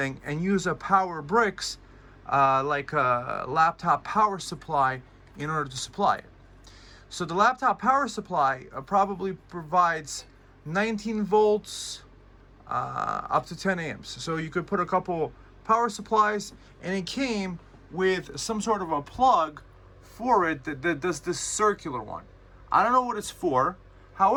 and use a power bricks like a laptop power supply in order to supply it. So the laptop power supply probably provides 19 volts up to 10 amps. So you could put a couple power supplies, and it came with some sort of a plug for it that does this circular one. I don't know what it's for.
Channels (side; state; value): both; identical; correlation 1.00